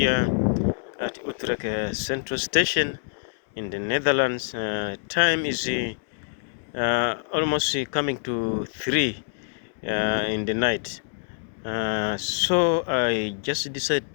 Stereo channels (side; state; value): right; silent; 61 dB below the other